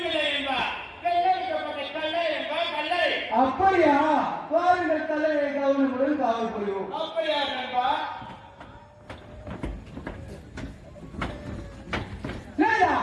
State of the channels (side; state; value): both; identical; correlation 1.00